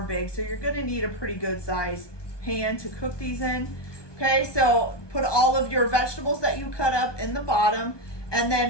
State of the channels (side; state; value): right; late; 1.2 ms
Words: big, so you're going to need a pretty good size pan to cook these in. Okay, so put all of your vegetables that you cut up in the bottom and